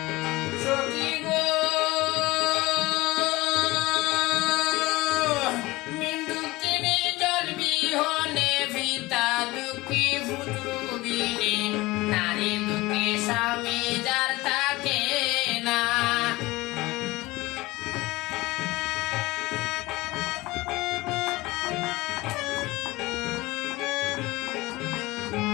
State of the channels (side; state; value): right; quieter; 20.5 dB